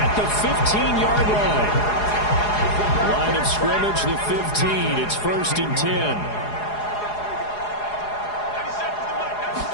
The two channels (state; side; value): late; right; 4.8 ms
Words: the 15-yard line. Line of scrimmage, the 15. It's 1st and 10.